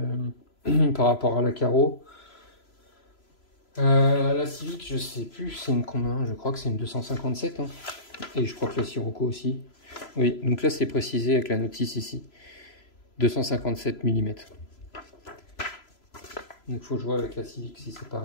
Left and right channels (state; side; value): late; right; 3.0 ms